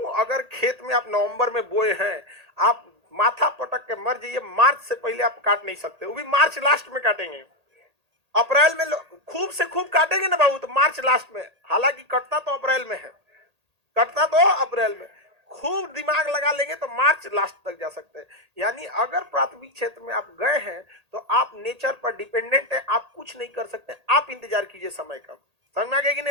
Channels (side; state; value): left; late; 1.8 ms